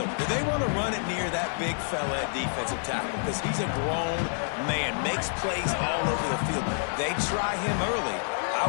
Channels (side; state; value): right; silent; digital silence